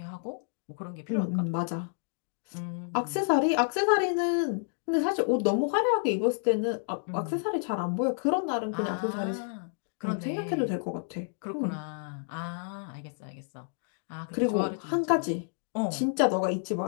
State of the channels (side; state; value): right; silent; digital silence